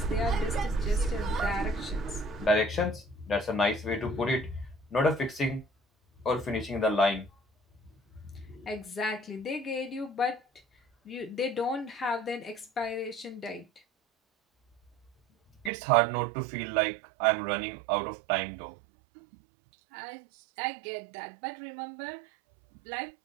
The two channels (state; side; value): drops out; left; at 15.7 s